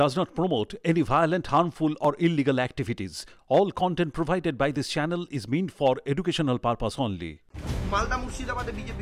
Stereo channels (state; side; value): identical; both; correlation 1.00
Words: not promote any violent, harmful or illegal activities. All content provided by this channel is meant for educational purpose only. Malda মুর্শিদাবাদে